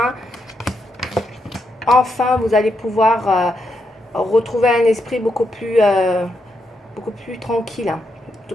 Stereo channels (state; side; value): normal; both; correlation 0.81